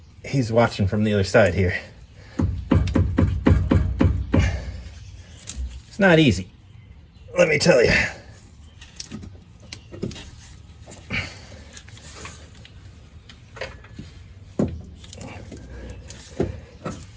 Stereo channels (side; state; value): both; identical; correlation 1.00